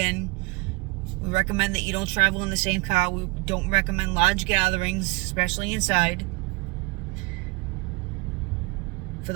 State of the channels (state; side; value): quieter; left; 25.4 dB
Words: We recommend that you don't travel in the same car. We don't recommend large gatherings, especially inside. For